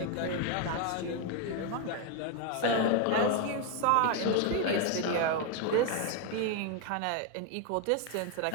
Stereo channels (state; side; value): different; both; correlation 0.01